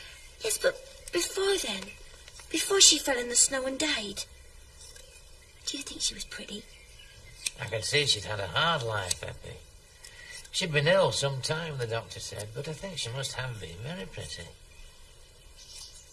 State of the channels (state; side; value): identical; both; correlation 1.00